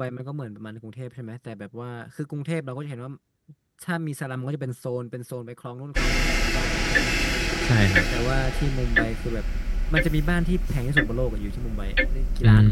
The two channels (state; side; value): identical; both; correlation 1.00